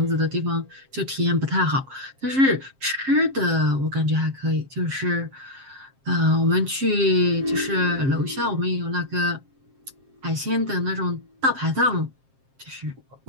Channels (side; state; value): left; late; 7.5 ms